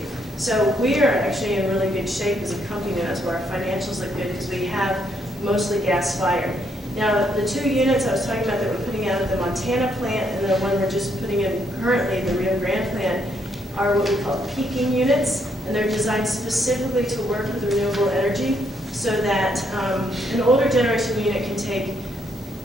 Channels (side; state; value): right; noise; hiss, 27 dB below the sound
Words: So we are actually in really good shape as a company, and that's where our financials look good because we have mostly gas-fired. Now, the 2 units I was talking about that we're putting out at the Montana plant and the one we're just putting in currently, the Rio Grande plant, are what we call peaking units, and they're designed specifically to work with renewable energy so that an older generation unit can take,